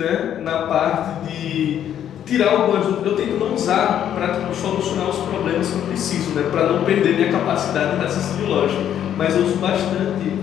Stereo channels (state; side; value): quieter; right; 10.2 dB